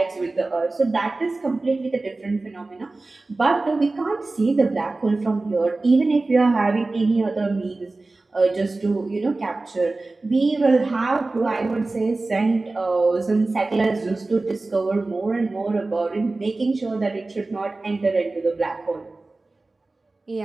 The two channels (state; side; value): quieter; left; 3.3 dB